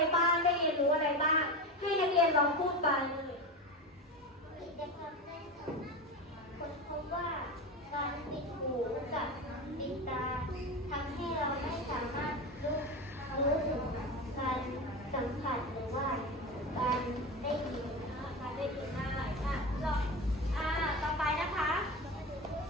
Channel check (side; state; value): both; normal; correlation 0.23